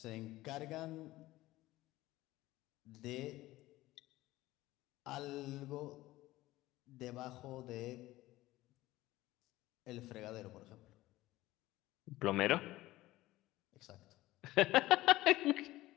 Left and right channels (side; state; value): right; quieter; 17.3 dB